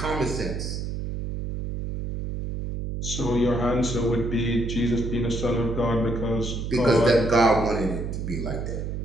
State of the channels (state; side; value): noise; right; hum, 4 dB below the sound